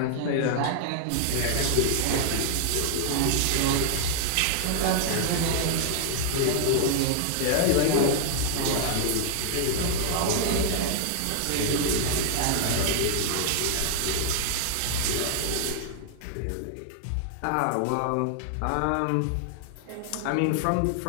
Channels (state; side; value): different; both; correlation -0.01